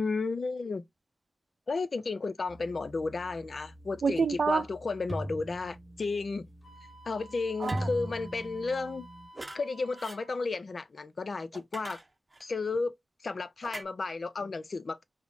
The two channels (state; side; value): normal; both; correlation 0.91